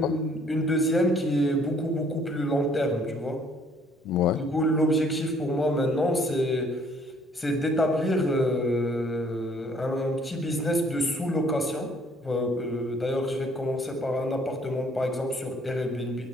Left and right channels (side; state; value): both; normal; correlation 0.61